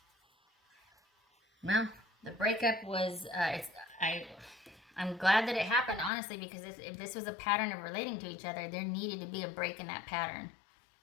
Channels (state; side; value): drops out; right; at 6.1 s